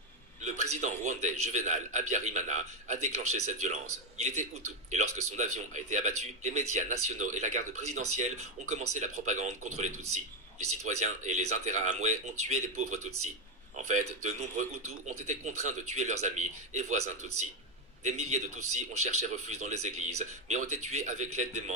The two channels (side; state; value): both; normal; correlation 0.08